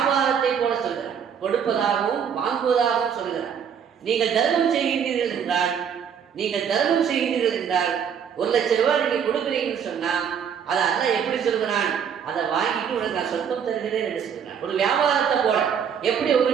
போல சொல்கிறான், கொடுப்பதாகவும் வாங்குவதாகவும் சொல்கிறான். நீங்கள் தர்மம் செய்கின்றீர்கள் என்றால், நீங்கள் தர்மம் செய்கின்றீர்கள் என்றால் 1 லட்சம் ரூபாய் நீங்க கொடுக்குறீங்கன்னு சொன்னா அதை அல்லாஹ் எப்படி சொல்கிறான்? அதை வாங்கிட்டு உனக்கு நான் சொர்க்கம் தருகிறேன் என்று சொல்கிறான். ஒரு வியாபாரத்தை போல எப்படி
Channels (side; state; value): left; quieter; 7.7 dB